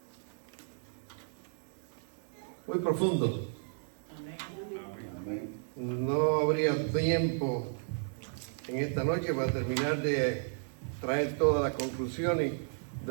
profundo. No habría tiempo en esta noche para terminar de traer todas las conclusiones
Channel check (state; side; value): silent; left; digital silence